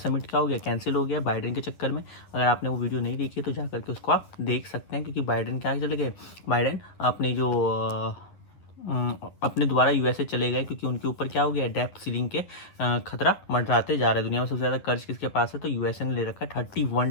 क्या हो गया, कैंसिल हो गया बाइडेन के चक्कर में। अगर आपने वो वीडियो नहीं देखी तो जा करके उसको आप देख सकते हैं, क्योंकि बाइडेन क्या चले गए, बाइडेन अपने जो अपने द्वारा यूएसए चले गए, क्योंकि उनके ऊपर क्या हो गया, डेप्थ सीलिंग के खतरा मंडराते जा रहे हैं। दुनिया में सबसे ज़्यादा कर्ज किसके पास है, तो यूएसए ने ले रखा है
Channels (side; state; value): right; late; 10 ms